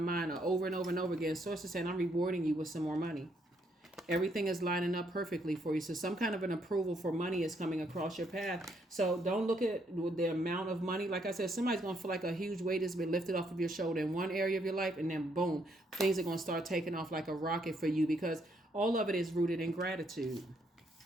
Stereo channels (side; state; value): both; normal; correlation 0.73